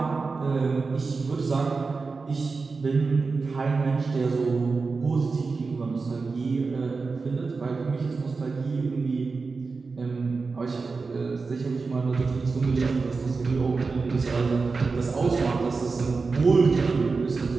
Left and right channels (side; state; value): left; quieter; 4.3 dB